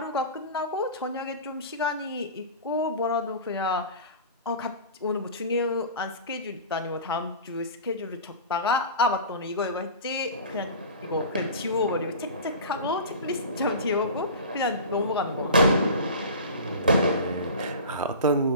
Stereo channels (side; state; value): both; inverted; correlation -0.36